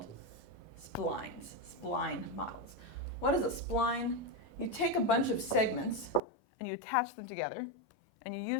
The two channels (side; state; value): right; drops out; at 6.2 s